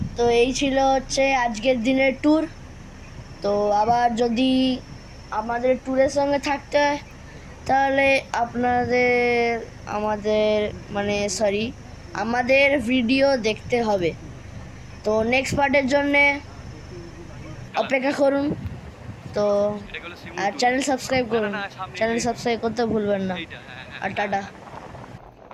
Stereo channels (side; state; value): both; identical; correlation 1.00